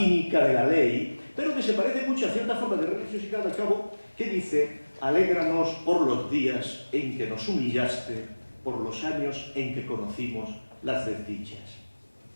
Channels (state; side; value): inverted; both; correlation -1.00